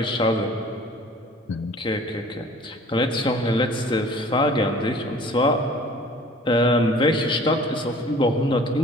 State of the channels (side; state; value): both; normal; correlation 0.49